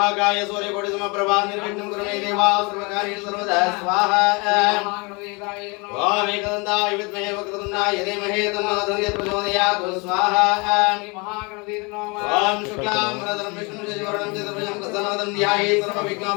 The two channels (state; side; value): quieter; right; 29.2 dB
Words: సూర్యకోటి సమప్రభా నిర్విఘ్నం కురుమే దేవా సర్వకార్య సర్వదా స్వాహా ఓం ఏకదంతాయ విద్మహే వక్రతుండాయ ధీమహి తన్నో దంతే ప్రచోదయాత్ స్వాహా శ్రీ మహాగణపతి ఓం శుక్లాం వరదరం విష్ణుం శశివర్ణం చతుర్భుజం ప్రసన్నవదనం ధ్యాయే